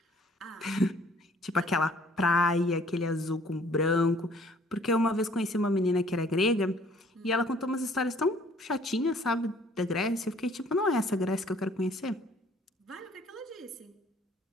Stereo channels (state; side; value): normal; both; correlation 0.58